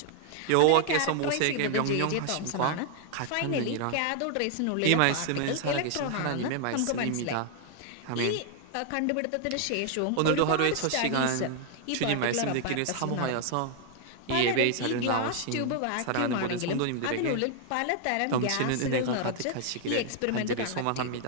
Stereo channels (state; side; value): different; both; correlation 0.00